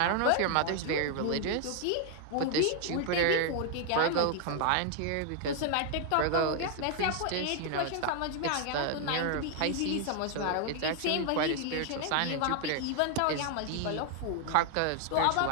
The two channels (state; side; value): different; both; correlation 0.00